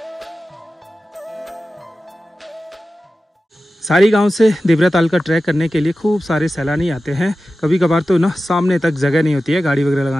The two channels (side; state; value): both; normal; correlation 0.94